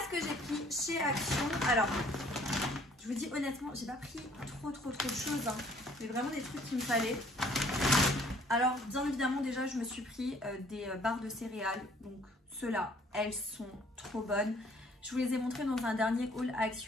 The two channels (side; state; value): both; normal; correlation 0.58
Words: que j'ai pris chez Action. Alors, je vous dis honnêtement, j'ai pas pris trop de choses. Hein. Mais vraiment des trucs qu'il me fallait. Alors, bien évidemment, déjà, je me suis pris des barres de céréales. Donc, ceux-là, elles sont trop bonnes. Je vous les ai montrées dans un dernier haul